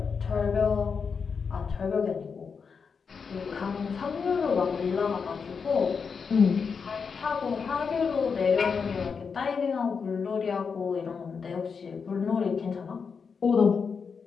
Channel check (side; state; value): right; quieter; 5.7 dB